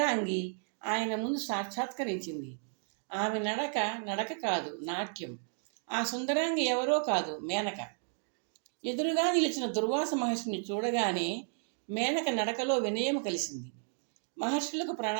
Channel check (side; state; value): left; silent; 56 dB below the other